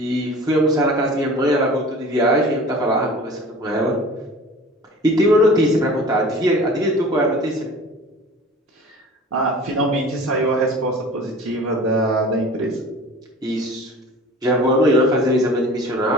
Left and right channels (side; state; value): both; normal; correlation 0.42